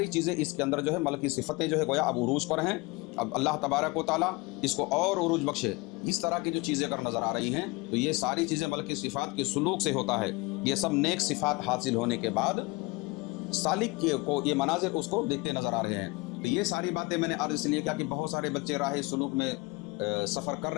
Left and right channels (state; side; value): quieter; right; 24.9 dB